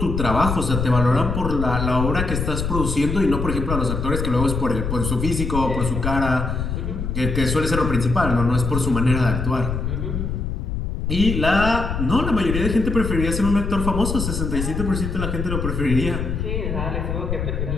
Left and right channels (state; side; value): noise; left; rumble, 2 dB below the sound